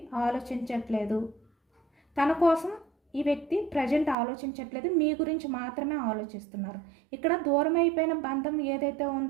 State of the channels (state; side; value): drops out; left; at 4.2 s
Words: ఆలోచించట్లేదు, తన కోసం ఈ వ్యక్తి ప్రజెంట్ ఆలోచించట్లేదు, మీ గురించి మాత్రమే ఆలోచిస్తున్నారు. ఇక్కడ దూరం అయిపోయిన బంధం ఏదైతే